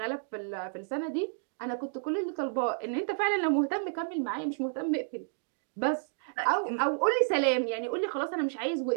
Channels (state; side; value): silent; left; digital silence